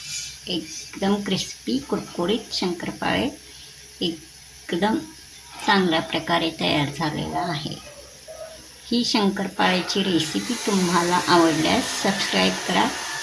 एकदम क्रिस्पी कुरकुरीत शंकरपाळे एकदम चांगल्या प्रकारे तयार झालेला आहे. ही शंकरपाळ्याची रेसिपी तुम्हाला आवडल्यास सबस्क्राईब करा,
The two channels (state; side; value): identical; both; correlation 1.00